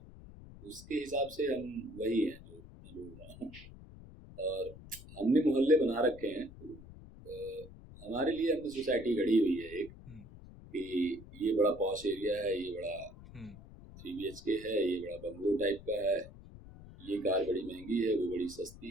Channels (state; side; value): noise; left; rumble, 17 dB below the sound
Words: उसके हिसाब से हम वही हैं जो मैं बोल रहा हूँ। और हमने मोहल्ले बना रखे हैं, तो हमारे लिए हमने सोसाइटी गढ़ी हुई है एक, कि ये बड़ा पॉश एरिया है, ये बड़ा 3 BHK है, ये बड़ा बंगलो टाइप का है, ये कार बड़ी महंगी है, वो बड़ी